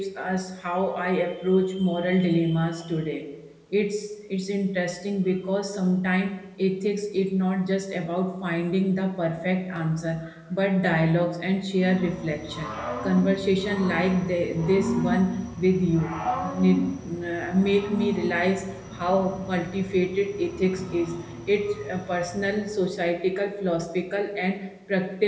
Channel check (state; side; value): identical; both; correlation 1.00